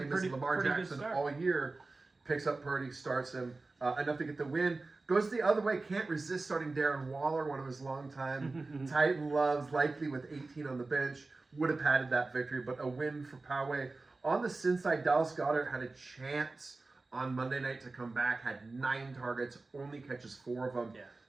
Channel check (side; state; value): left; quieter; 3.5 dB